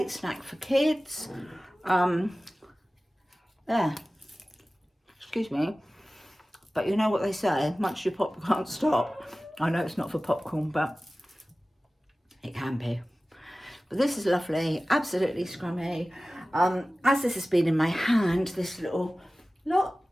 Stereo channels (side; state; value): both; normal; correlation 0.97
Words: snack for kids. Yeah, excuse me. But you know what they say, much you pop can't stop. I know it's not for popcorn, but it can be. But this is lovely, absolutely scrummy. As this has been in my hand, this little lot,